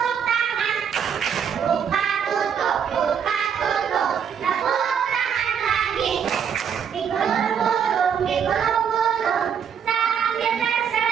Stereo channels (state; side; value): quieter; left; 7.7 dB